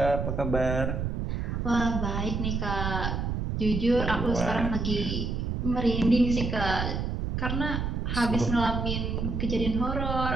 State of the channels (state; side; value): noise; right; rumble, 2 dB below the sound